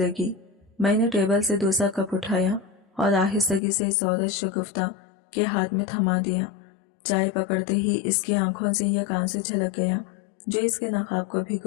मैंने टेबल से दूसरा कप उठाया और आहिस्तगी से इस औरत शगुफ्ता के हाथ में थमा दिया। चाय पकड़ते ही इसकी आंखों से एक आंसू झलक गया जो इसके नकाब को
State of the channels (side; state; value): right; drops out; at 3.6 s